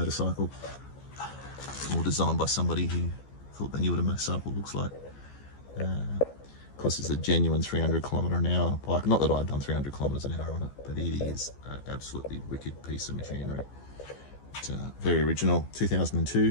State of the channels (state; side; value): late; right; 14 ms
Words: or designed by somebody who thought they knew what a motorcycle looks like. Of course, it's a genuine 300km/h bike. Not that I've done 300km/h on it, but it is an absolutely wicked piece of machinery. It's very original,